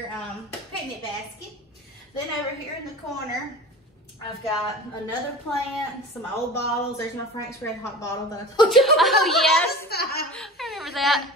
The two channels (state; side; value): normal; both; correlation 0.35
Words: picnic basket. Then over here in the corner, I've got another plant, some old bottles. There's my Frank's Red Hot bottle that I told you about. Oh, yes. last time. I remember that. And